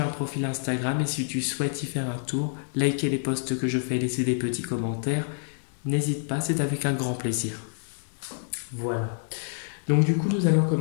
un profil Instagram et si tu souhaites y faire un tour, liker les posts que je fais, laisser des petits commentaires, n'hésite pas, c'est avec un grand plaisir. Voilà. Donc du coup, nous allons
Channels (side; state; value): right; silent; digital silence